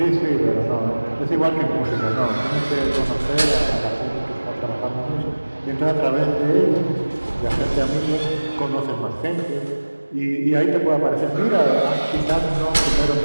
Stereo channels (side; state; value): both; inverted; correlation -1.00